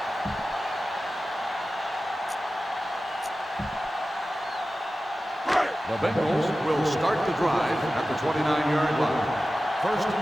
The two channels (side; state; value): both; normal; correlation 0.95